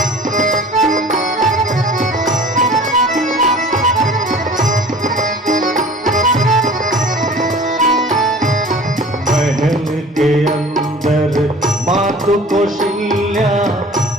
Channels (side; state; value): both; normal; correlation 0.44